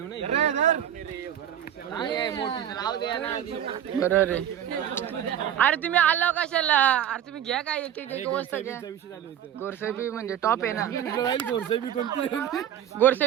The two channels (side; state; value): left; quieter; 10.3 dB